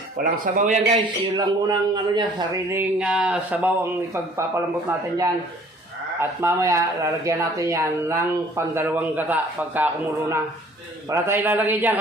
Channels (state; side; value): normal; both; correlation 0.54